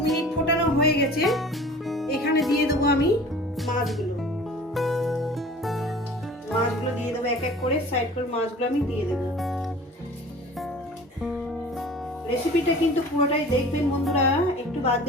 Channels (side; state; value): both; normal; correlation 0.43